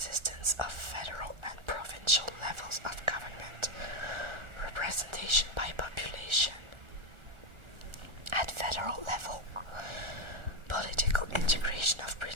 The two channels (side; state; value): left; late; 1.3 ms